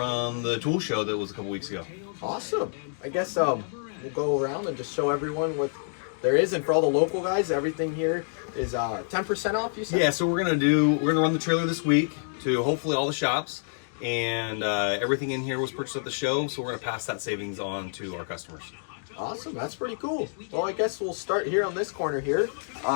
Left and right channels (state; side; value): silent; right; digital silence